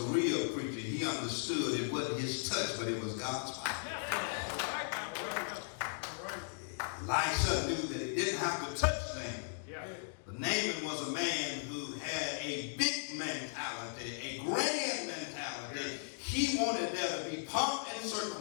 real preacher. He understood it wasn't his touch, but it was God's power. Elisha knew that he didn't have to touch Naaman. But Naaman was a man who had a big mentality, a grand mentality. He wanted there to be pomp and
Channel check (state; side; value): silent; right; digital silence